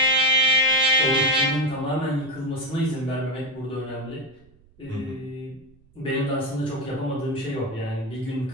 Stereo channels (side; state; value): right; noise; rumble, 29 dB below the sound